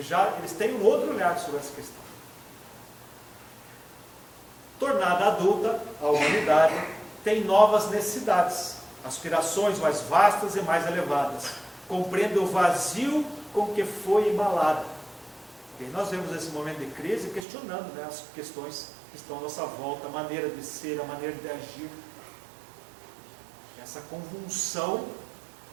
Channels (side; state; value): left; drops out; at 17.4 s